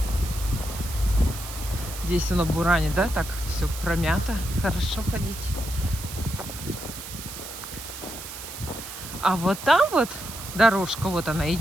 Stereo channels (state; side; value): noise; right; hiss, 11 dB below the sound